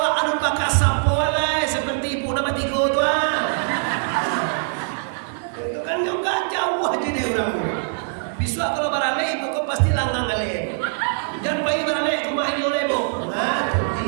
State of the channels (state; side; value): silent; left; 64 dB below the other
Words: anu pakai sapo lah seperti ibu nama tiga tuan. Itu kan juga jauh aja deh orang. Besok kalau barale ibu kau pasti langgang kali. Jangan pagi barale cuma ini oleh ibu. Nah,